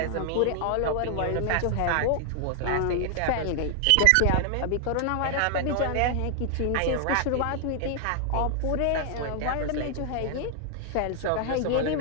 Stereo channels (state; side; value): different; both; correlation 0.00